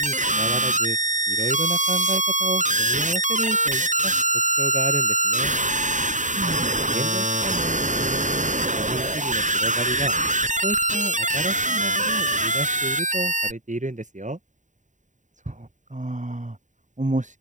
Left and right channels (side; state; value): left; late; 0.36 ms